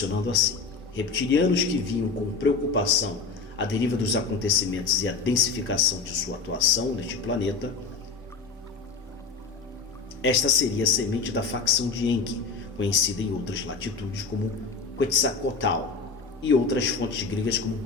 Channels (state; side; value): quieter; right; 4.6 dB